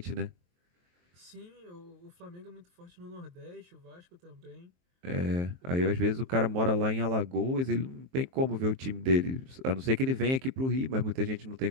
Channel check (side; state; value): left; late; 23 ms